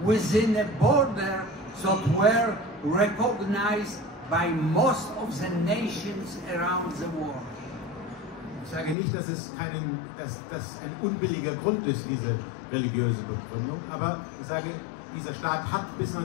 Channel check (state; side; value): drops out; right; at 9.0 s